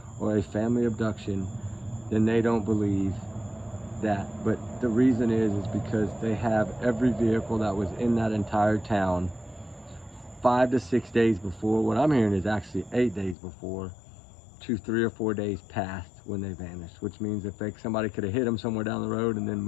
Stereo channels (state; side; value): drops out; right; at 13.4 s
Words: or a family abduction, then they don't believe that. But the reason is because they have every vehicle that was in that entire town 5 to 6 days before. What I'm hearing is actually 8 days before, to 3 or 4 days past when they vanished, which means if somebody could have hit them somewhere down the road and then